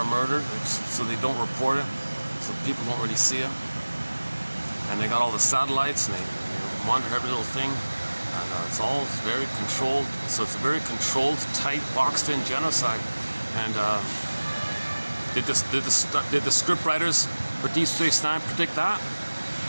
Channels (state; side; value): inverted; both; correlation -1.00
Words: murdered, so they don't report it, so people don't really see it. And they got all the satellites, and they monitor every little thing, and it's all very controlled. So it's a very controlled, tight, boxed-in genocide. And did the script writers for Deep Space Nine predict that?